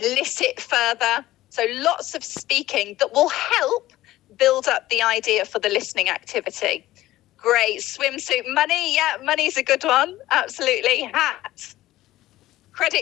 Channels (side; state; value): right; quieter; 15.9 dB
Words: further. So lots of speaking that will help build up the idea for the listening activity. Great. Swimsuit, money. Yeah, money's a good one. Absolutely. Hat.